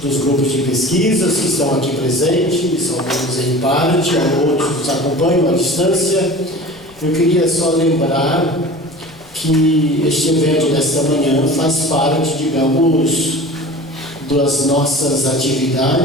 dos grupos de pesquisas que estão aqui presentes, alguns em parte, outros nos acompanham à distância, eu queria só lembrar que este evento desta manhã faz parte, digamos, das nossas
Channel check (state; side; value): noise; left; rumble, 27 dB below the sound